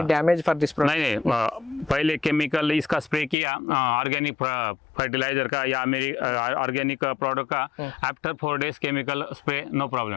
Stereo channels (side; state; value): right; drops out; at 3.4 s